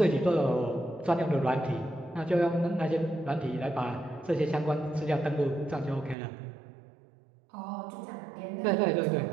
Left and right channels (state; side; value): drops out; left; at 6.2 s